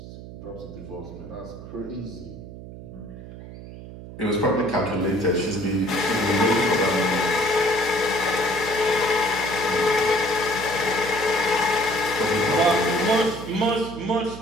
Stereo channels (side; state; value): right; noise; hum, 14 dB below the sound